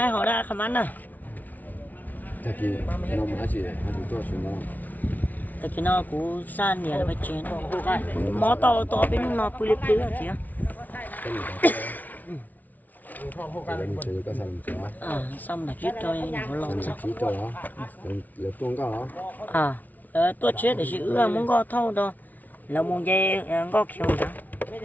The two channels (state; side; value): late; right; 0.078 ms